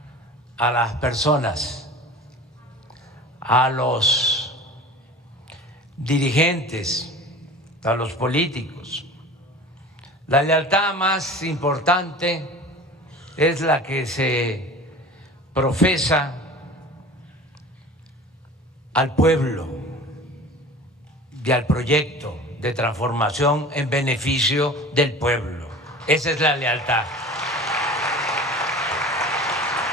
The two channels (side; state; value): both; normal; correlation 0.39